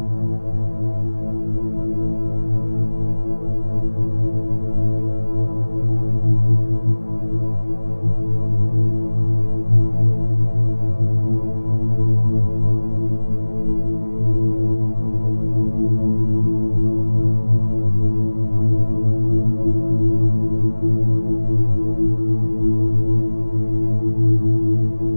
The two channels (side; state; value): both; inverted; correlation -1.00